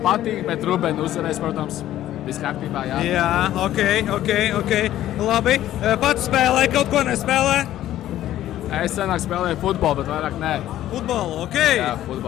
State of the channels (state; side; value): quieter; right; 13.1 dB